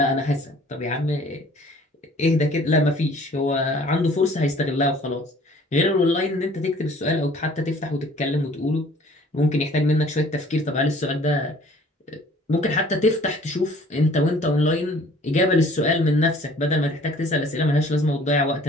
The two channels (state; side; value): normal; both; correlation 0.53